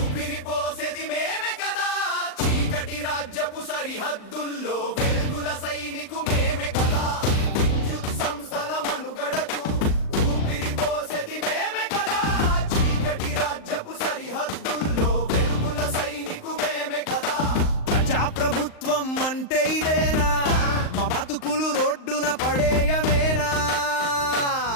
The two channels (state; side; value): late; right; 38 ms